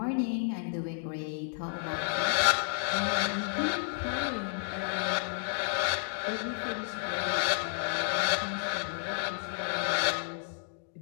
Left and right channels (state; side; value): silent; right; digital silence